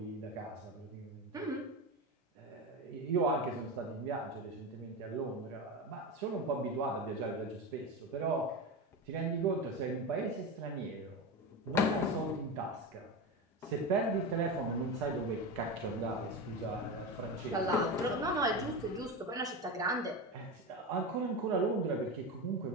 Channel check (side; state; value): both; normal; correlation 0.21